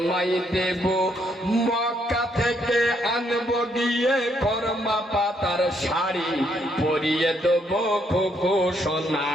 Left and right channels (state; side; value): normal; both; correlation 0.73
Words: দেব, মক্কা থেকে আনবো গিয়ে কর্মা পাতার শাড়ি, পরিয়ে দেবো খুকু সোনা,